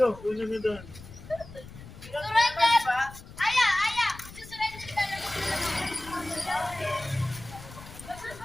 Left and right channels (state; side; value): noise; left; rumble, 16 dB below the sound